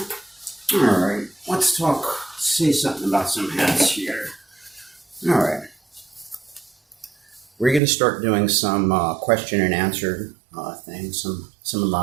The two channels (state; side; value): drops out; left; at 7.8 s